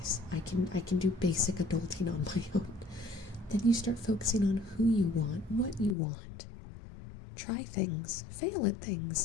I can do basic adulting on my own, then you start focusing on who you want, what you want. Try things, fail at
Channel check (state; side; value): drops out; right; at 6.0 s